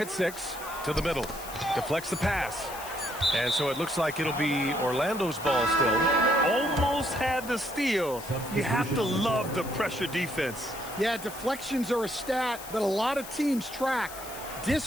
at 6. To the middle. Deflects the pass. And so it looks like it'll be Orlando's ball still. Almost had the steal. You have to love the pressure defense. Yeah, deflections are a stat that a lot of teams track.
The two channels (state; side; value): noise; left; hiss, 13 dB below the sound